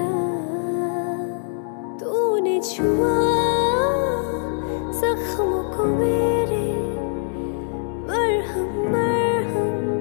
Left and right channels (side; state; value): right; silent; digital silence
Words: तूने छुआ जख्मों को मेरे, मरहम मरहम